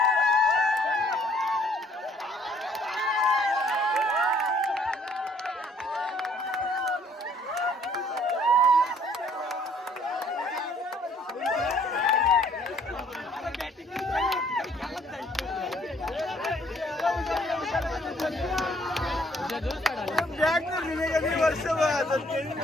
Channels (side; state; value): both; normal; correlation 0.61